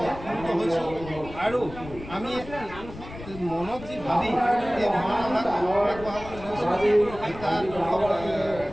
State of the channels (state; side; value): noise; left; rumble, 14 dB below the sound